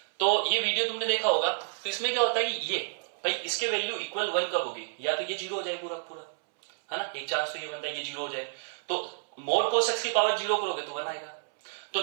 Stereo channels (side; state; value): left; silent; 58 dB below the other